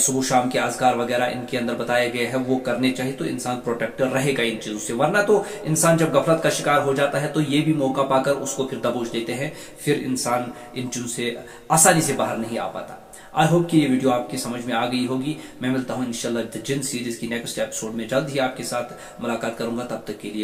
شام کے اذکار وغیرہ ان کے اندر بتائے گئے ہیں وہ کرنے چاہیے، تو انسان پروٹیکٹ رہے گا ان چیزوں سے۔ ورنہ تو انسان جب غفلت کا شکار ہو جاتا ہے تو یہ بھی موقع پا کر اس کو پھر دبوچ دیتے ہیں، پھر انسان ان چیزوں سے آسانی سے باہر نہیں آ پاتا۔ آئی ہوپ کہ یہ ویڈیو آپ کی سمجھ میں آ گئی ہوگی۔ میں ملتا ہوں انشاءاللہ دی جن سیریز کی نیکسٹ ایپیسوڈ میں، جلد ہی آپ کے ساتھ ملاقات کروں گا۔ تب تک کے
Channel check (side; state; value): both; identical; correlation 1.00